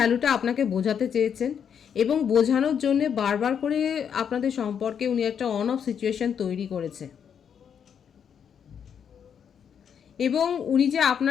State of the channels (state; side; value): quieter; right; 7.8 dB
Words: আপনাকে বোঝাতে চেয়েছেন। এবং বোঝানোর জন্যে বারবার করে আপনাদের সম্পর্কে উনি একটা অন অফ সিচুয়েশন তৈরি করেছে। এবং উনি যে